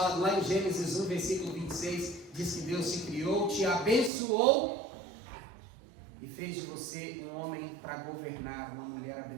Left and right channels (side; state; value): left; drops out; at 4.1 s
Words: Lá em Gênesis 1, versículo 26, diz que Deus te criou, te abençoou e fez de você um homem para governar, uma mulher